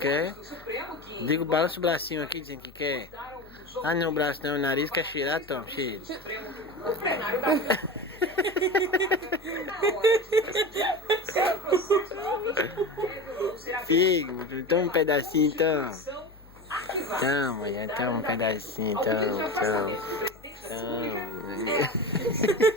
Digo, balança o bracinho aqui dizendo que quer. Ah, não, o braço não, o nariz quer cheirar, toma, cheira. Figo, toma um pedacinho, então. Toma, já toma um pedacinho, toma, toma.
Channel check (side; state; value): left; noise; hum, 24 dB below the sound